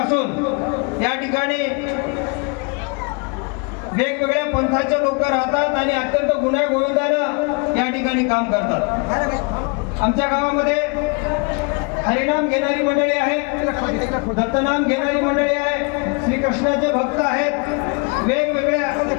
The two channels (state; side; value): quieter; right; 32.4 dB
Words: या ठिकाणी वेगवेगळ्या पंथाचे लोक राहतात आणि अत्यंत गुण्यागोविंदानं या ठिकाणी काम करतात. आमच्या गावामध्ये हरिनाम घेणारी मंडळी आहे, दत्तनाम घेणारी मंडळी आहे, श्रीकृष्णाचे भक्त आहेत,